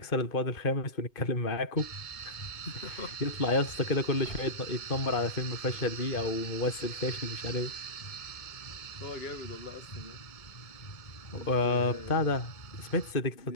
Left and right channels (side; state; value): right; late; 2.2 ms